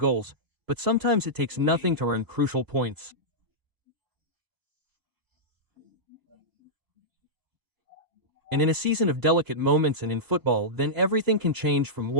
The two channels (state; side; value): late; left; 3.0 ms